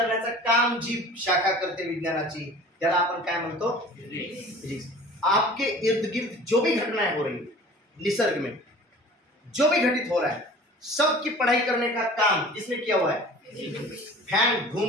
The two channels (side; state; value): both; normal; correlation 0.43